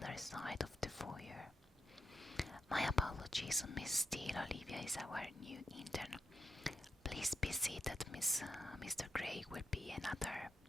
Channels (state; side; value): normal; both; correlation 0.85